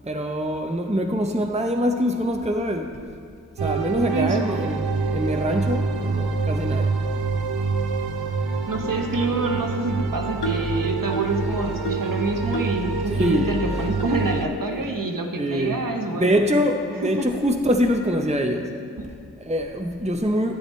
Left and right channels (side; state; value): both; normal; correlation 0.53